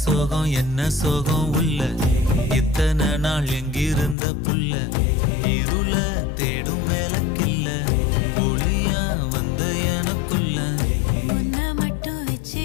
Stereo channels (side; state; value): right; drops out; at 4.2 s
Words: சோகம் என்ன சோகம் உள்ள இத்தனை நாள் எங்கிருந்த புல்ல இருள தேடும் வேலைக்கில்ல ஒளியா வந்த எனக்குள்ள உன்னை மட்டும்